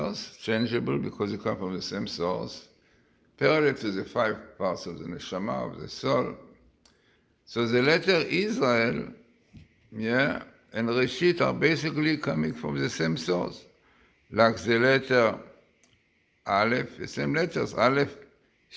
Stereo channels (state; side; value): identical; both; correlation 1.00